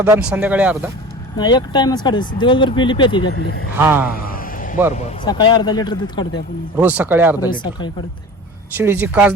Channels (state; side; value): normal; both; correlation 0.37